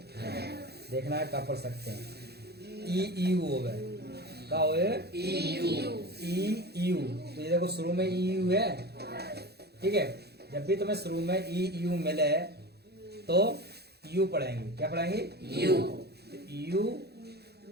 देखना है कब पढ़ सकते हैं। ई यू हो गए, क्या हो गए? E U. तो ये देखो शुरू में ई यू है, ठीक है। जब भी तुम्हें शुरू में ई यू मिले तो यू पढ़ेंगे। क्या पढ़ेंगे? यू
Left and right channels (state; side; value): late; left; 0.47 ms